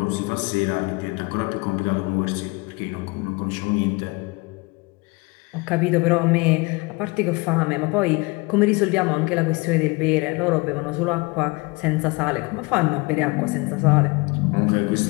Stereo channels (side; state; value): right; quieter; 25.9 dB